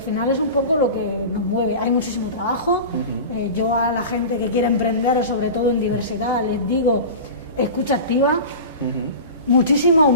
final es un poco lo que nos mueve. Hay muchísimo trabajo. Yo a la gente que quiere emprender, sobre todo en diversidad, les digo, escucha activa, muchísima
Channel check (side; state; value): both; inverted; correlation -0.32